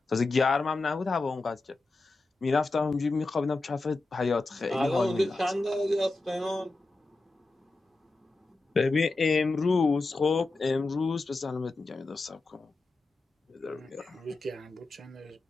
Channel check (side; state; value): right; quieter; 3.3 dB